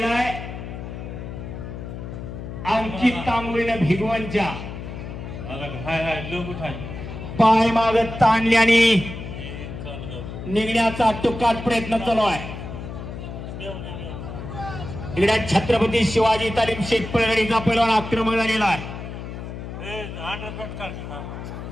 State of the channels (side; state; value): left; noise; hum, 9 dB below the sound